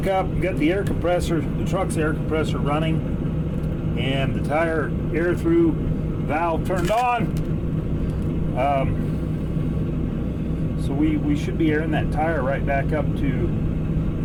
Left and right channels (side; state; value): both; identical; correlation 1.00